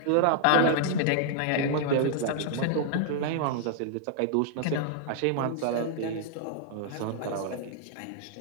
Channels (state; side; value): different; both; correlation -0.01